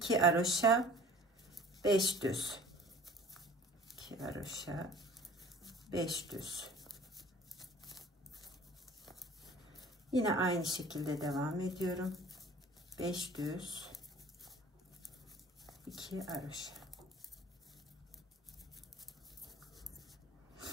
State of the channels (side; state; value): both; normal; correlation 0.47